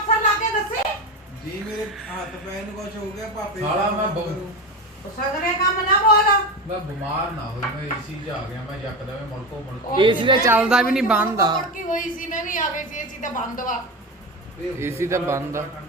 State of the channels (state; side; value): normal; both; correlation 0.22